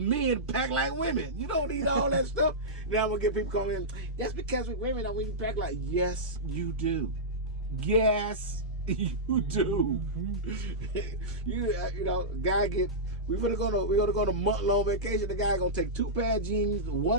pack like women. You don't need all that stuff. Now I'm gonna get people calling in. That's because we women don't even pack like. Yes, you do. Yes, you do. Mm-hmm. you know, guy get. We're gonna go to month-long vacation. The guy gonna take 2 pair of jeans,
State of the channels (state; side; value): normal; both; correlation -0.13